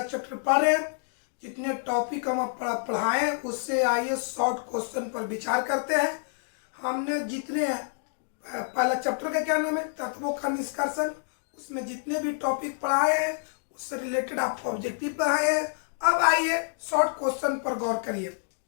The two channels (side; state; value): right; silent; digital silence